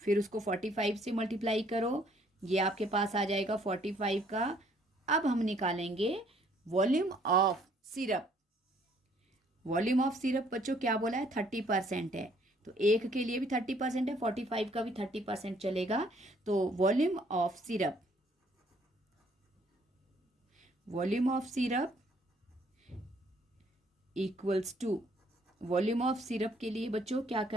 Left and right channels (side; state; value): both; normal; correlation 0.64